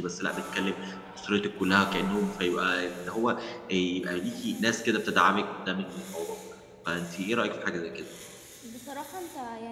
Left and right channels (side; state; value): both; identical; correlation 1.00